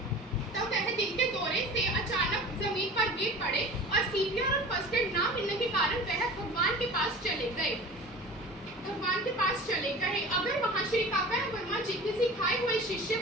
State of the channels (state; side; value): normal; both; correlation 0.38